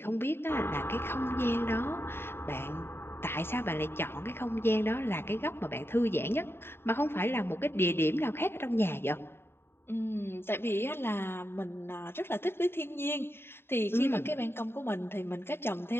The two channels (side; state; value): right; late; 0.11 ms